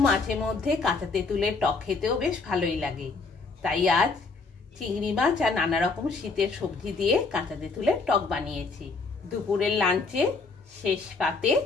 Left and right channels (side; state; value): right; quieter; 4.1 dB